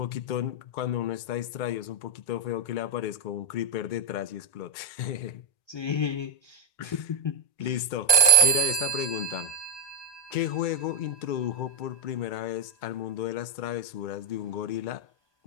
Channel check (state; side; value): late; right; 1.2 ms